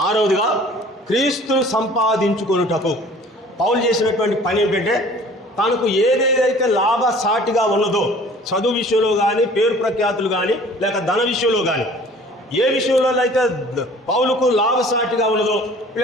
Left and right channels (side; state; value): both; normal; correlation 0.49